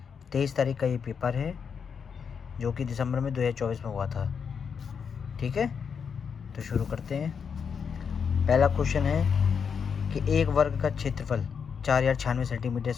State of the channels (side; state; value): right; quieter; 6.5 dB